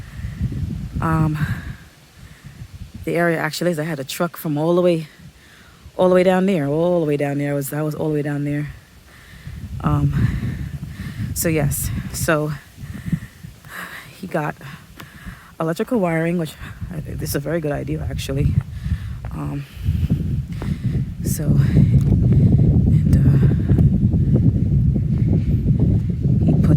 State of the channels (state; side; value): identical; both; correlation 1.00